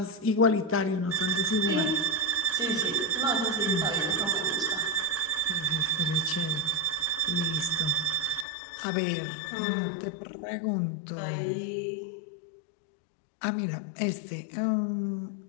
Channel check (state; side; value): drops out; right; at 8.5 s